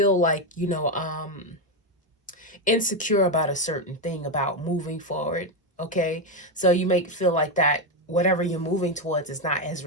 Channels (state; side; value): normal; both; correlation 0.08